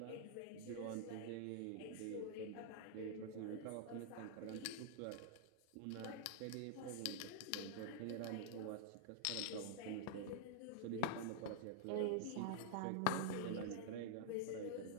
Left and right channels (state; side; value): different; both; correlation -0.01